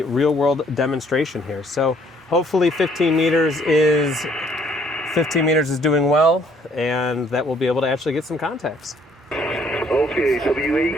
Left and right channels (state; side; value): normal; both; correlation 0.63